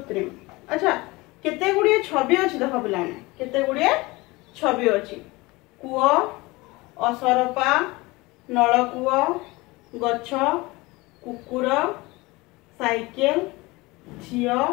अच्छा केते गुडी छवि अछि देखो पिला मन केते गुडी छवि अछि। कुओ असरपा नलकुओ गछ कुकुर साइकेल झियो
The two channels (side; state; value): right; quieter; 22.5 dB